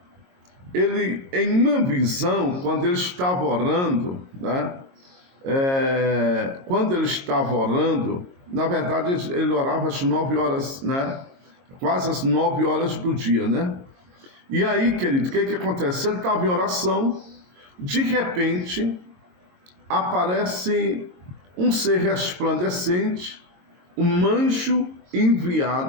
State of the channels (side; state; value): left; late; 22 ms